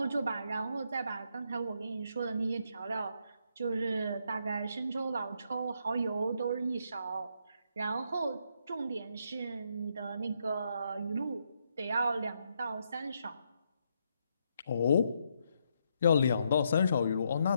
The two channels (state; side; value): inverted; both; correlation -0.77